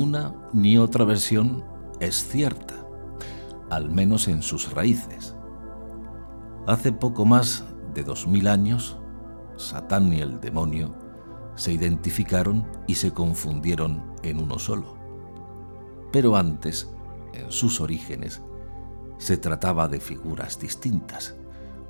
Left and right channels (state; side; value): inverted; both; correlation -1.00